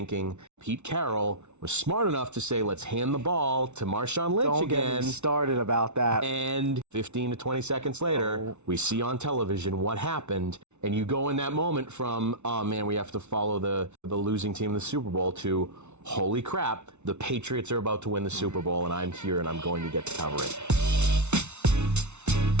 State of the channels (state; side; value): late; left; 0.82 ms